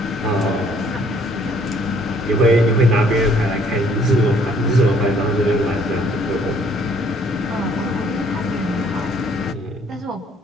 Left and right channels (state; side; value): normal; both; correlation 0.62